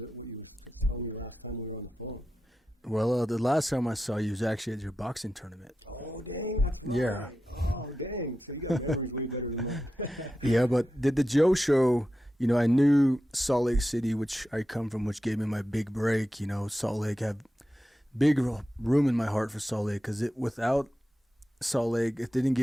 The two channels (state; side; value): normal; both; correlation 0.90